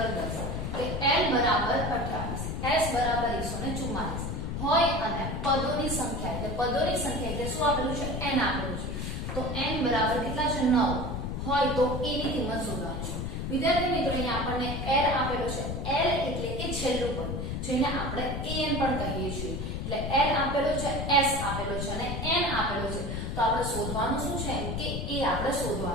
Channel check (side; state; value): left; noise; rumble, 3 dB below the sound